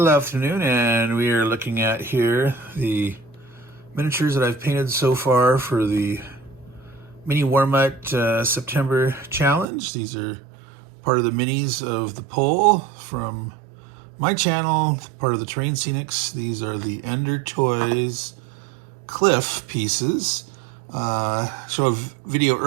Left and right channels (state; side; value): drops out; left; at 9.7 s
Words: afternoon and we are looking at here the miniatures that I've painted so far for the Mini Warmut September challenge. These are part of the minis of the poll from my channel, part of the Terrain Scenics. These are the Ender Toys Cliff pieces. Show a video